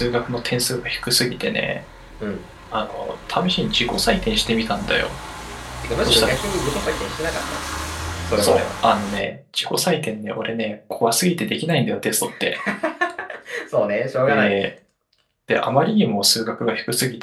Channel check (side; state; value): both; identical; correlation 1.00